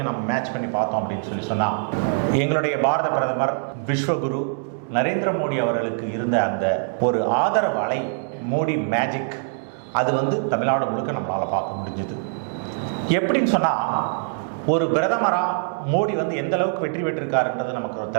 நம்ம மேட்ச் பண்ணி பார்த்தோம் அப்படின்னு சொன்னால் எங்களுடைய பாரத பிரதமர் விஸ்வகுரு நரேந்திர மோடி அவர்களுக்கு இருந்த அந்த ஒரு ஆதரவு அலை, மோடி மேஜிக், அது வந்து தமிழ்நாடு முழுக்க நம்மளால் பார்க்க முடிஞ்சுது. எப்படின்னு சொன்னால் ஒரு பிரதமராக மோடி வந்து எந்த அளவுக்கு வெற்றி பெற்றிருக்காருன்றது நமக்கு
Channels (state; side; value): silent; left; 63 dB below the other